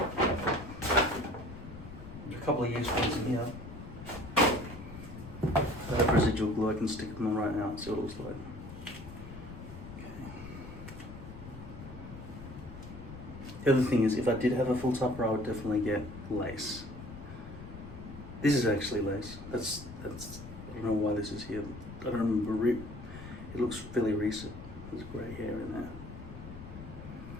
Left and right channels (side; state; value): left; noise; rumble, 13 dB below the sound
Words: There's a couple of used ones in here. I have residual glue, I can stick them on right now and see what it looks like. The other thing is, if I did have a full topper, I would definitely get lace. This is actually lace. That's. I don't know why this is here. I don't remember it. It looks fairly recent. There's grey hair in there.